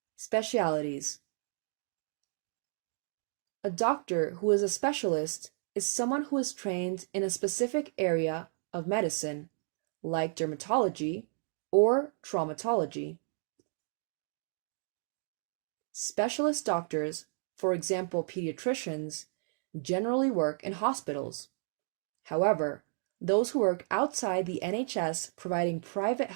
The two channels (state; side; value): silent; left; digital silence